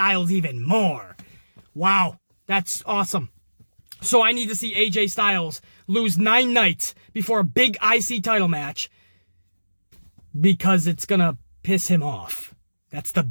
even more. Wow, that's awesome. So I need to see AJ Styles lose 9 nights before a big IC title match because it's gonna piss him off. That's the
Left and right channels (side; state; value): both; inverted; correlation -1.00